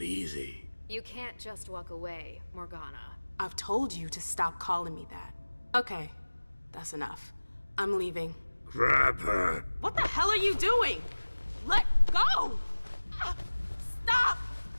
easy. You can't just walk away, Morgana. I've told you to stop calling me that. Okay, that's enough. I'm leaving. Grab her. What the hell are you doing? Let go! Ah, stop!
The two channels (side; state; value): both; inverted; correlation -1.00